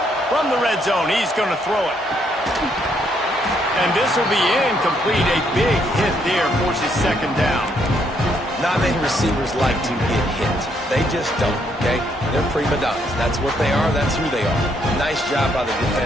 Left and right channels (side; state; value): both; normal; correlation 0.72